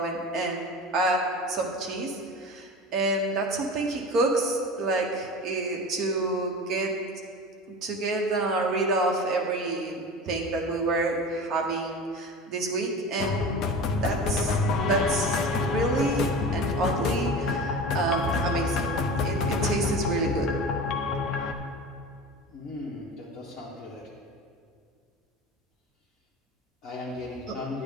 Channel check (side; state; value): both; normal; correlation 0.32